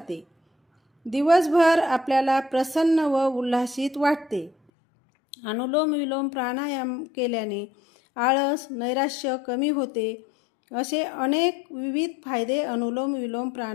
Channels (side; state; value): right; drops out; at 4.5 s